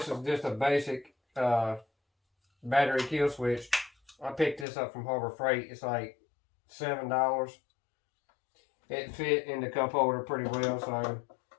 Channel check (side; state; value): right; drops out; at 4.7 s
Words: is just a basic battery kill switch. I picked this up from Harbor Freight. It's like $7. It fit in the cup holder pretty well, so